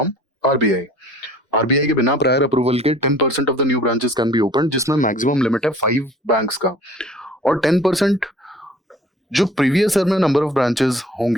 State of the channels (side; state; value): both; normal; correlation 0.50